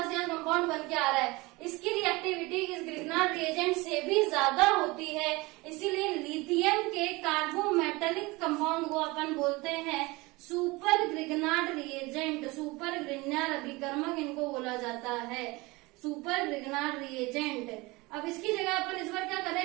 यहाँ कंपाउंड बन के आ रहा है। इसकी रिएक्टिविटी इस ग्रिग्नार्ड रिएजेंट से भी ज्यादा होती है, इसीलिए लिथियम के कार्बोमेटेलिक कंपाउंड को अपन बोलते हैं super Grignard reagent. Super Grignard अभिकर्मक इनको बोला जाता है, सुपर ग्रिग्नार्ड रिएजेंट। अब इसकी जगह अपन इस बार क्या कर रहे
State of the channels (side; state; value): left; quieter; 23.2 dB